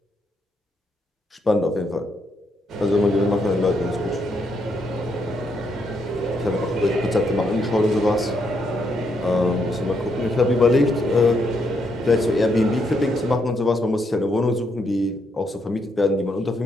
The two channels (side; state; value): both; normal; correlation 0.77